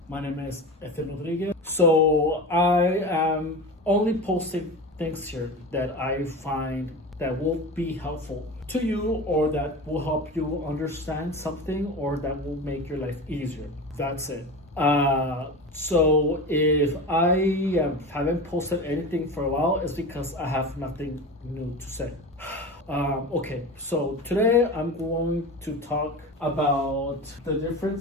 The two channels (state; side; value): normal; both; correlation 0.29